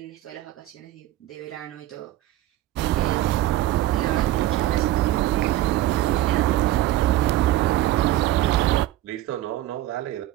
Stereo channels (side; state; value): left; quieter; 14.8 dB